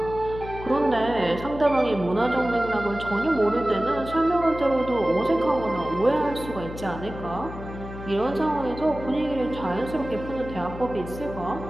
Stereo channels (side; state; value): left; noise; hum, 11 dB below the sound